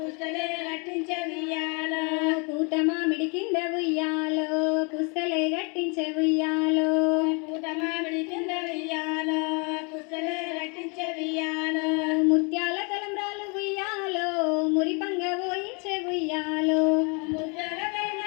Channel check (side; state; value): right; quieter; 33.9 dB